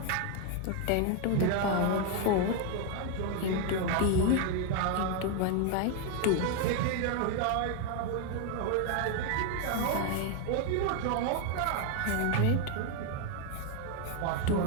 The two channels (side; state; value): both; different; correlation 0.01